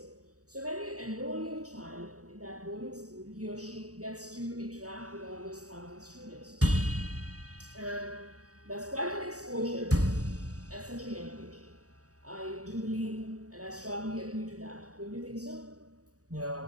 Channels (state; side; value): late; left; 0.66 ms